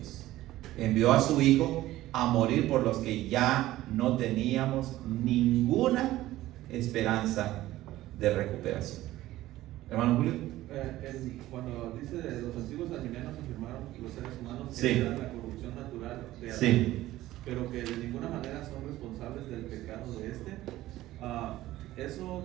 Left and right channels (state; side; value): quieter; left; 15.6 dB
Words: Envió a su Hijo a morir por los que ya no teníamos ninguna esperanza de recuperación. Hermano Julio. Cuando dice de los antiguos alienígenas afirmaron los seres humanos que Sí. eran la corrupción natural de Adán, Sí. pero que de ninguna manera son responsables del pecado de eso